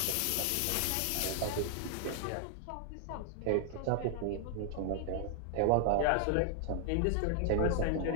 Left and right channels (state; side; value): different; both; correlation 0.00